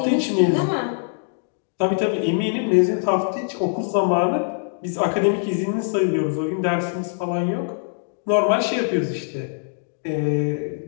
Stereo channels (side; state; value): right; silent; digital silence